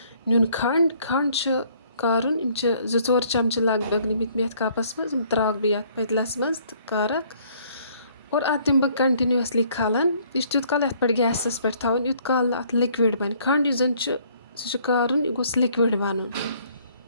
نیُن کھنٛڈ. کھنٛڈ چھُ کارُن، یِم چھِ 2-4 چَمچہٕ لگ بگ نِمٕتۍ مےٚ یَتھ کَپَس منٛز. یِم ترٛاوَکھ بہٕ یَتھ پٔتلَس منٛز تہٕ کارَکھ اور اَتھ دِمہٕ بہٕ کَنٹِنیوٗسلی کھَلَن. یہِ چھُ تیُت کال یَتھ پٮ۪ٹھ گیسَس پٮ۪ٹھ تھاوُن یُت کال نہٕ اَتھ لِکوِڈ بَنہِ. کھنٛڈ یُس زَن چھُ سُہ چھُ کارُن، یہِ گوٚژھ لِکوِڈ بَنُن.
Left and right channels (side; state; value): both; inverted; correlation -0.62